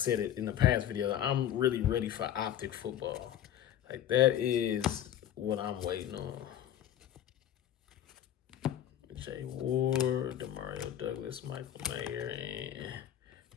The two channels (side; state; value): right; quieter; 10.9 dB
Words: it in the past video, I'm really ready for optic football. Like, that is what I'm waiting on. Jay Ward, Demario Douglas, Michael Mayer, and